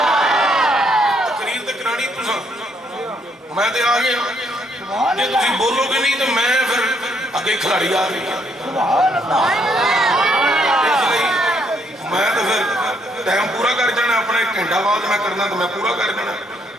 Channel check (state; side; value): normal; both; correlation 0.71